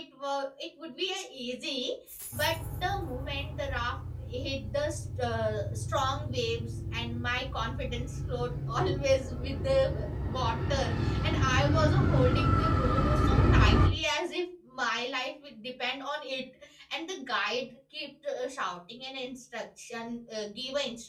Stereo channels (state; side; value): identical; both; correlation 1.00